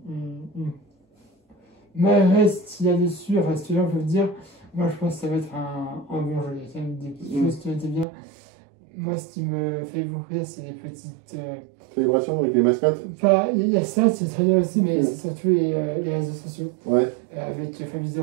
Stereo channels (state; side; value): drops out; left; at 8.1 s